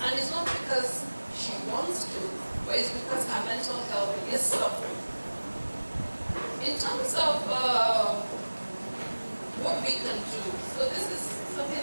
it's not because she wants to, but it's because her mental health is suffering. In terms of what we can do, so this is something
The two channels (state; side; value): inverted; both; correlation -1.00